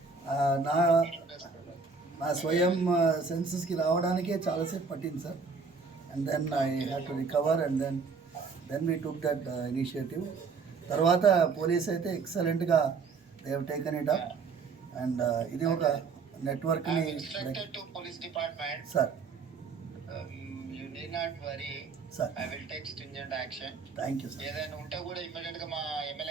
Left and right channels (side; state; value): left; quieter; 4.8 dB